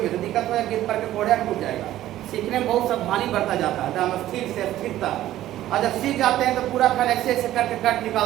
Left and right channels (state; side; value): quieter; left; 13.8 dB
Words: तो दिक्कत हो, गिर पर के कोढ़िया टूट जाएगा। सीखने में बहुत सावधानी बरता जाता है, एकदम स्थिर से स्थिरता, और जब सीख जाते हैं तो पूरा खन ऐसे करके कट